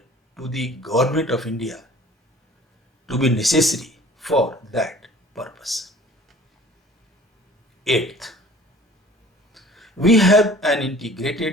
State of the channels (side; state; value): both; normal; correlation 0.49